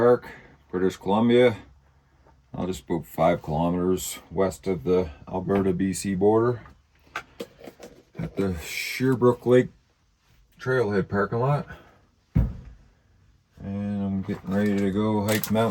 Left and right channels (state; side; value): identical; both; correlation 1.00